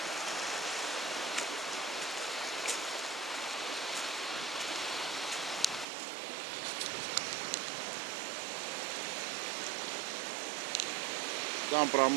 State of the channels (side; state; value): left; drops out; at 5.9 s